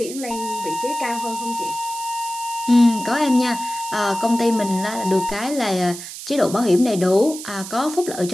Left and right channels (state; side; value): noise; right; hiss, 11 dB below the sound